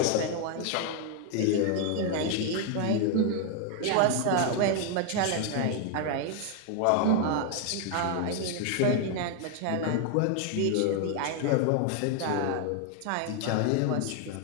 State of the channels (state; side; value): different; both; correlation 0.00